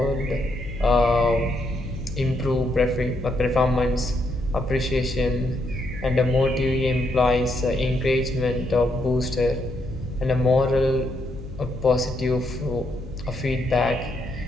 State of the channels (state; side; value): noise; left; hum, 13 dB below the sound